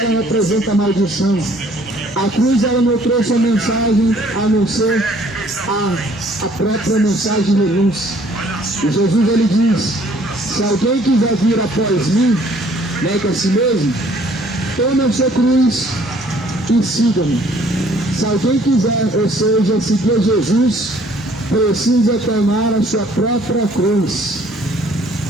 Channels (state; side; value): normal; both; correlation 0.59